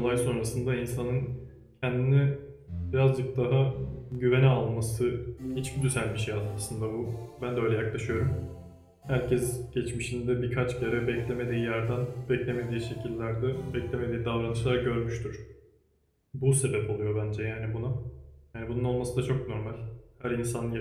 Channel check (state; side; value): identical; both; correlation 1.00